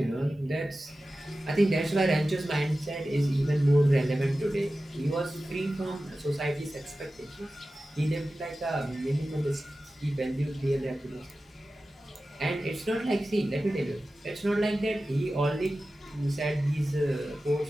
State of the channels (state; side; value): normal; both; correlation 0.94